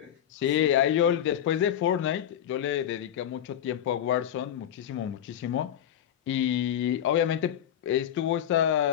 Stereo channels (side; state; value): right; quieter; 10.2 dB